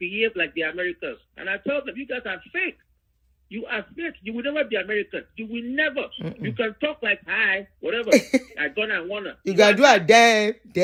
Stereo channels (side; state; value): both; identical; correlation 1.00